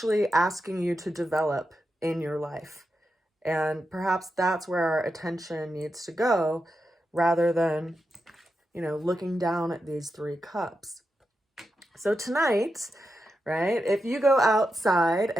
asking you to develop in your life. And perhaps that's where our attention needs to go, rather than, looking down at these 3 cups. So tonight, right, if you go outside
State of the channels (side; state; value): both; normal; correlation 0.88